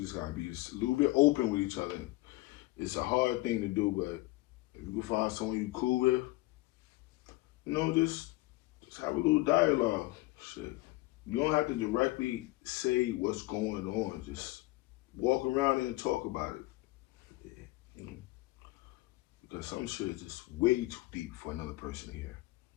gotta be just a little bit open with each other. It's a hard thing to do, but if you can find someone you cool with, you know, just have a little dialogue. Shit. You don't have to directly say what's going on. Just walk around and talk about it. Yeah. Mm-hmm. Because some shit is just way too deep for another person to hear.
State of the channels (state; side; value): quieter; right; 20.6 dB